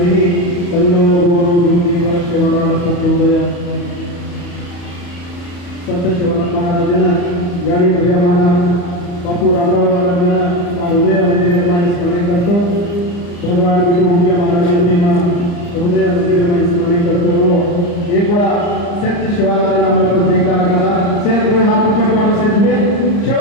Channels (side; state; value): right; late; 34 ms